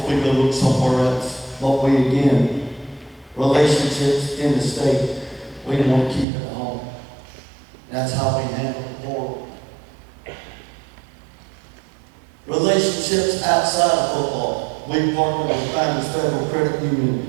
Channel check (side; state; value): left; drops out; at 6.2 s